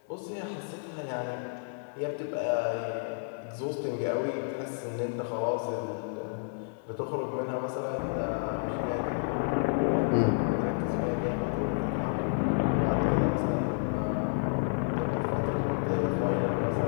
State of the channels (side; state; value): right; silent; 58 dB below the other